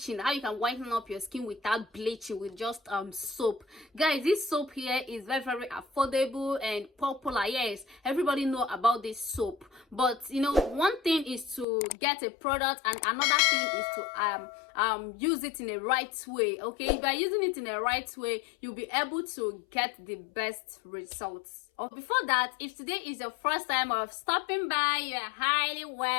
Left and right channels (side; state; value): right; drops out; at 11.7 s